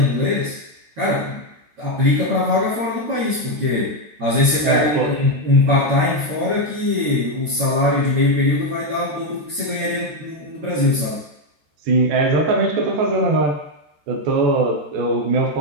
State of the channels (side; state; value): left; late; 13 ms